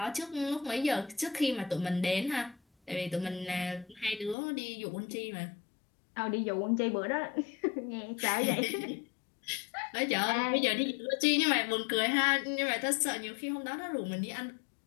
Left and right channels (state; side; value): drops out; right; at 4.4 s